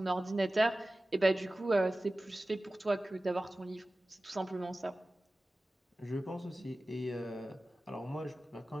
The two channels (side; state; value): both; normal; correlation 0.96